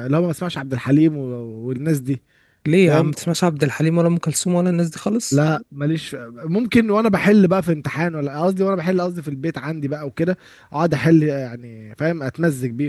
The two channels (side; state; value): both; identical; correlation 1.00